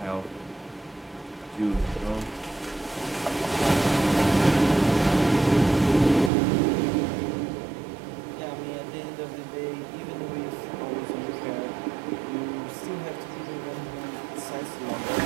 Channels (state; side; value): drops out; left; at 6.3 s